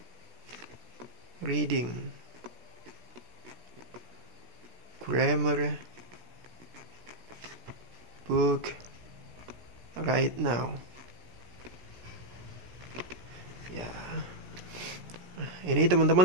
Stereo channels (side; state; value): left; late; 17 ms